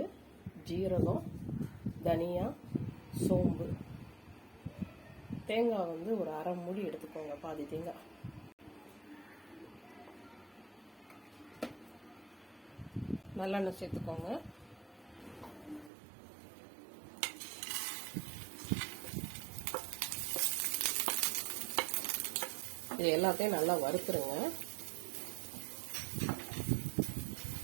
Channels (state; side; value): drops out; left; at 15.9 s